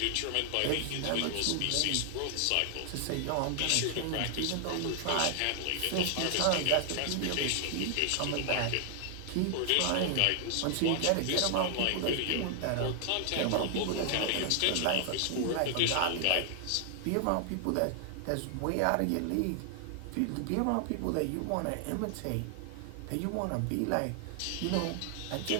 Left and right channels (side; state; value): both; different; correlation 0.00